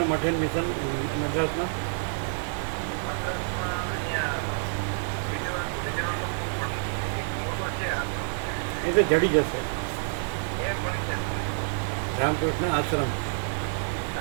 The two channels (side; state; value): left; silent; 57 dB below the other